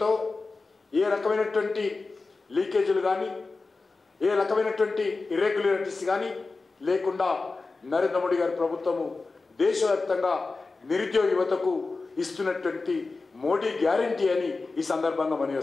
ఏ రకమైనటువంటి లీకేజీలు కానీ, ఏ రకమైనటువంటి ఇర్రెగ్యులారిటీస్ కానీ లేకుండా నరేంద్ర మోడీ గారి ప్రభుత్వము దేశవ్యాప్తంగా నిరుద్యోగ యువతకు ఇస్తున్నటువంటి మోడీ గ్యారంటీ అని ఈ సందర్భంగా మనవి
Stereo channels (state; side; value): quieter; right; 3.8 dB